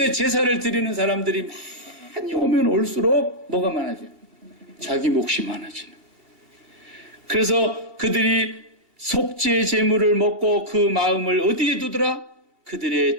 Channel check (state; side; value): late; left; 2.7 ms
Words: 제사를 드리는 사람들이 많이 오면 올수록 뭐가 많아져요? 자기 몫이 많아지는. 그래서 그들이 속죄 제물을 먹고 그 마음을 어디에 두더라?